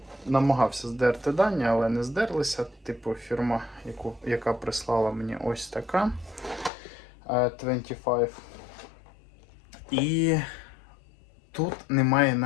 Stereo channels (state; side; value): drops out; right; at 6.7 s